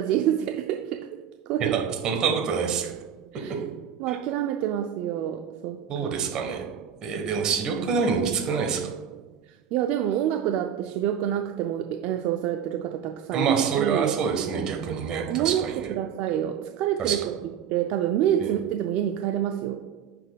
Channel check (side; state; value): left; quieter; 8.2 dB